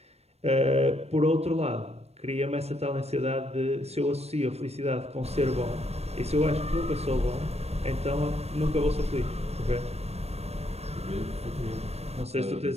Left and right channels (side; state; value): left; late; 0.31 ms